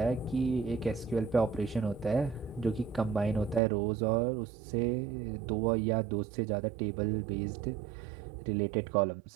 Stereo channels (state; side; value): drops out; left; at 3.6 s